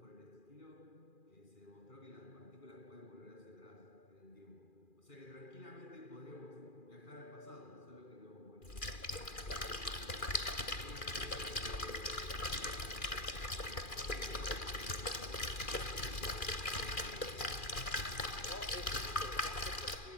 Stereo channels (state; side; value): late; right; 2.4 ms